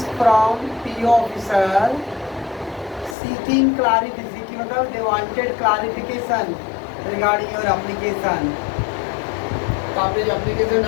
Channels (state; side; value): drops out; right; at 3.2 s